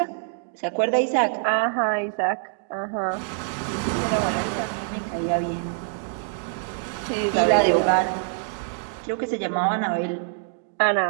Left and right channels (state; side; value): silent; left; digital silence